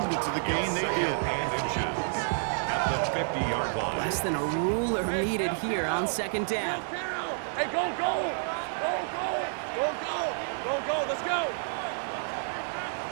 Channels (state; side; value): silent; left; digital silence